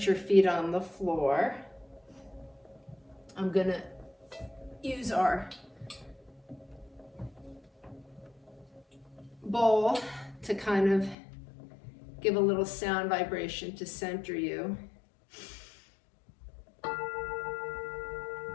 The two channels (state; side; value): drops out; right; at 11.2 s